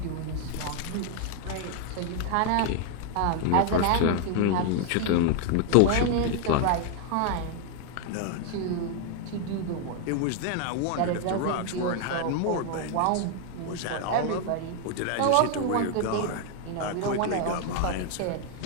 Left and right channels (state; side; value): different; both; correlation 0.00